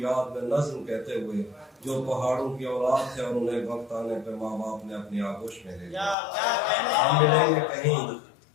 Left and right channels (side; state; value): right; drops out; at 6.2 s